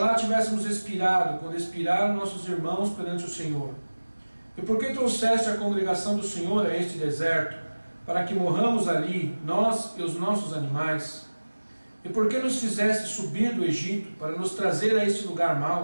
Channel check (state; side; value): inverted; both; correlation -1.00